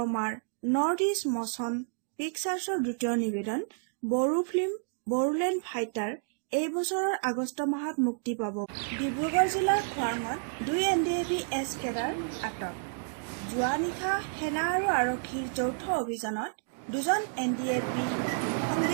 নৰ্থ ইষ্ট মচন পিকচাৰ্ছৰ দ্বিতীয় নিবেদন বড়ো ফিল্ম বড়োলেণ্ড ফাইটাৰ এই বছৰৰ আগষ্ট মাহত মুক্তি পাব। ডিব্ৰুগড় জিলাৰ খোৱাঙত 2 NDAB-S কেডাৰ আটক। যোৱা নিশা সেনা আৰু আৰক্ষীৰ যৌথ অভিযানত 2জন NDAB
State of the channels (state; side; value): silent; left; digital silence